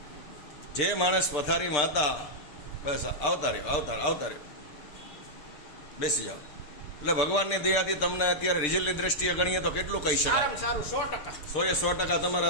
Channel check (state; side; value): late; right; 6.7 ms